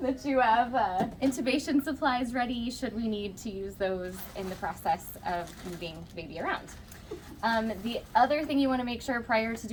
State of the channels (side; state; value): both; identical; correlation 1.00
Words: that you have intubation supplies ready should we need to use those in the process of moving the baby around. The other thing you want to make sure prior to